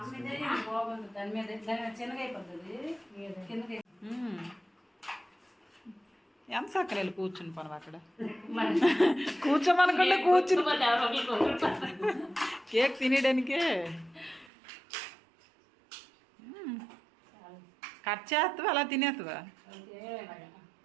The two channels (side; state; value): left; drops out; at 14.5 s